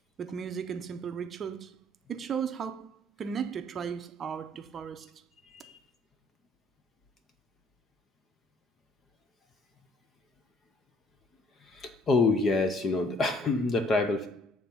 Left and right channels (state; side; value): normal; both; correlation 0.61